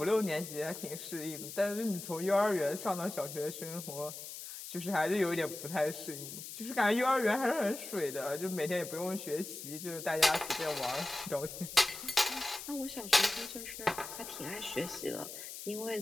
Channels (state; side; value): noise; left; hiss, 10 dB below the sound